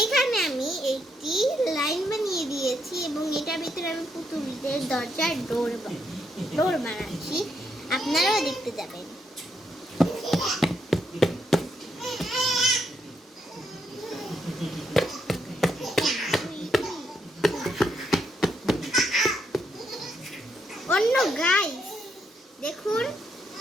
আমি একটি লাইন বানিয়ে দিয়েছি এবং এটার ভিতরে আমি পুতুলদের দরজার ডোর বানাচ্ছি, আপনারাও দেখতে যাবেন। অন্য গাইস দেখুন,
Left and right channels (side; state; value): both; normal; correlation 0.77